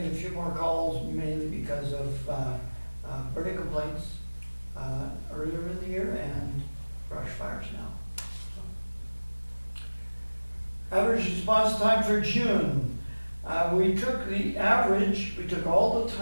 a few more calls, mainly because of burning complaints earlier in the year and brush fires now. So. Average response time for June. We took the average, we took all the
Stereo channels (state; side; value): inverted; both; correlation -1.00